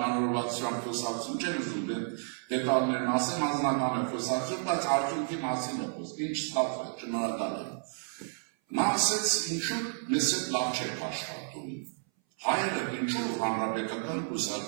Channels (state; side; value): silent; left; 57 dB below the other